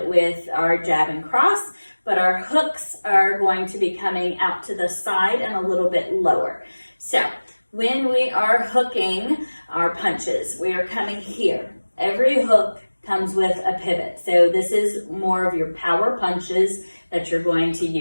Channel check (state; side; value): inverted; both; correlation -1.00